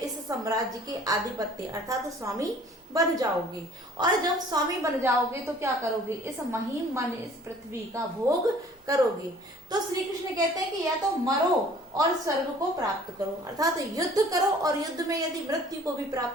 साम्राज्य के आधिपत्य अर्थात स्वामी बन जाओगे, और जब स्वामी बन जाओगे तो क्या करोगे? इस महीम माने इस पृथ्वी का भोग करोगे। तो श्री कृष्ण कहते हैं कि या तो मरो और स्वर्ग को प्राप्त करो, अर्थात युद्ध करो और युद्ध में यदि मृत्यु को भी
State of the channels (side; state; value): both; normal; correlation 0.52